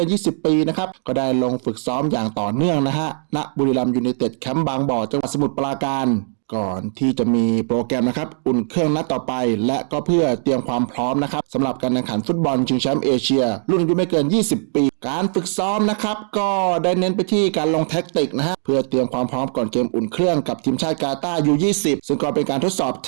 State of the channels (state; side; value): silent; left; digital silence